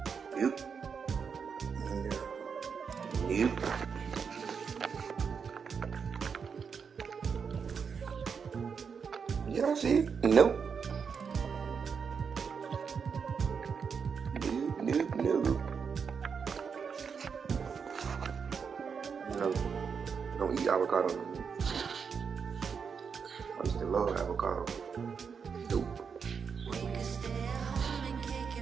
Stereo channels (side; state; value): left; quieter; 6.2 dB